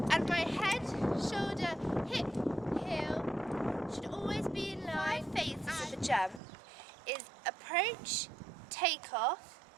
and my head, shoulder, hip, heel should always be in line. 5 phases of a jump is approach, take off,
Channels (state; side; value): drops out; left; at 6.4 s